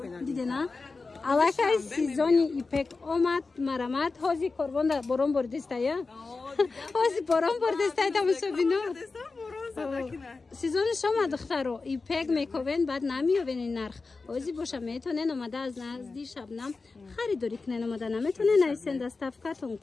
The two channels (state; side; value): quieter; right; 4.0 dB